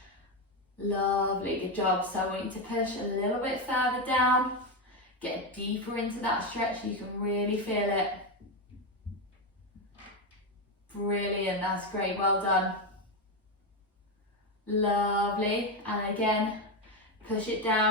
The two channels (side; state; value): both; normal; correlation 0.10